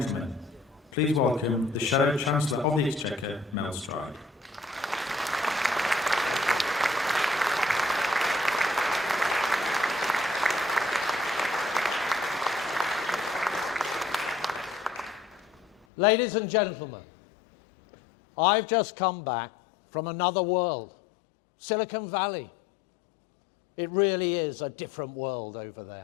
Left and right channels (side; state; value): right; drops out; at 15.8 s